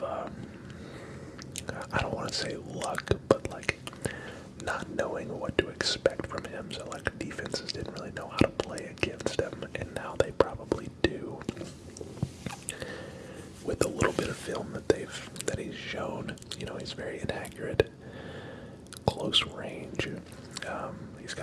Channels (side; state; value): both; identical; correlation 1.00